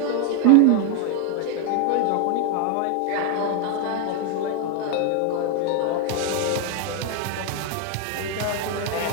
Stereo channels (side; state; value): both; different; correlation 0.01